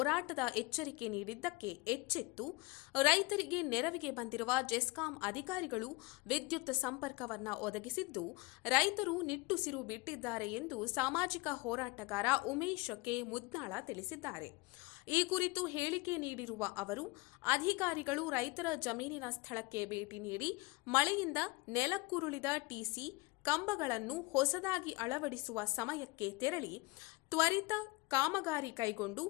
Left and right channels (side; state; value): right; quieter; 24.1 dB